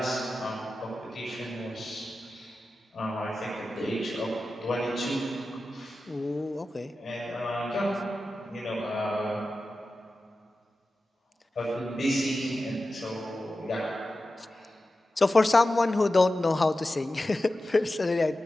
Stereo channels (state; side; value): normal; both; correlation 0.93